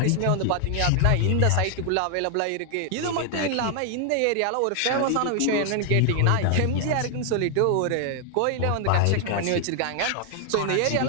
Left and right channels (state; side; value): different; both; correlation 0.00